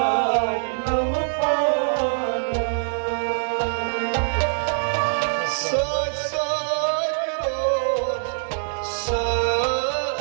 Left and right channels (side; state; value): left; silent; digital silence